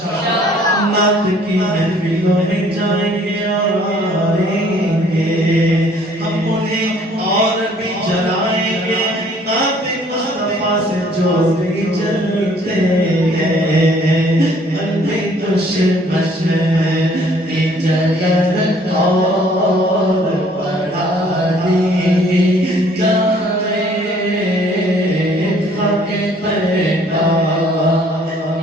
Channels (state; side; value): normal; both; correlation 0.59